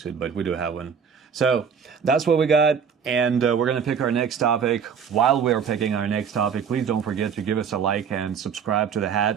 it, but we do have one. So that's what we got, and we're gonna pick our next topic. While we're picking our next topic, please don't forget to give us a like and subscribe to the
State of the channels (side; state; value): left; quieter; 6.9 dB